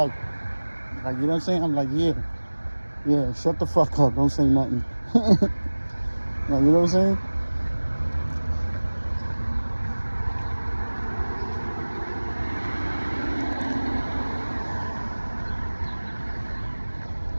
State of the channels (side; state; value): both; inverted; correlation -1.00